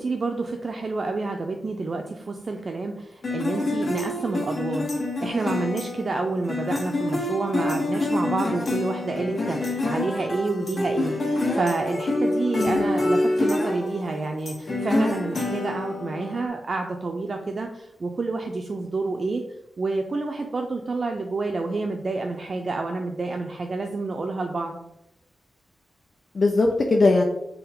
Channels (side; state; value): both; normal; correlation 0.88